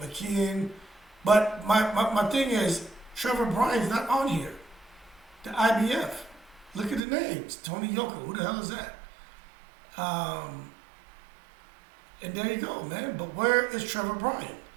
but my thing is Trevor Bryan's not on here. The IBF. Look at the names. Tony Yoka, who the hell is that? And there you go, man. But where is Trevor Bryan?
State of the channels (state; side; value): drops out; left; at 7.0 s